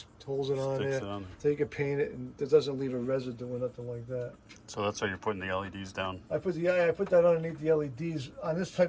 holds it on Sticks there. it on there. So you can paint it, and it doesn't leave a residue or nothing like that. So that's how you're putting the LEDs down. I put that underneath the LEDs on this type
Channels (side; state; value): both; identical; correlation 1.00